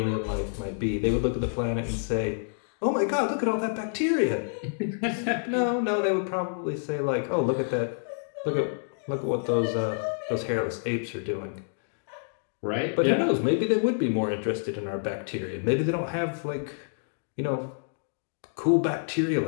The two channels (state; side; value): silent; right; digital silence